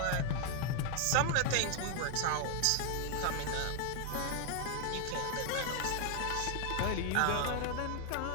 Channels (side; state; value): both; different; correlation 0.00